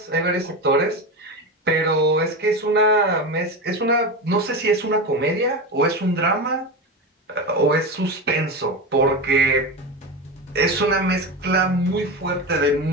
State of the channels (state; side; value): normal; both; correlation 0.20